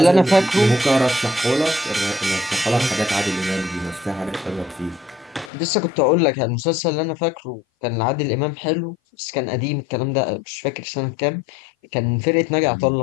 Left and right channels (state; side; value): drops out; right; at 5.5 s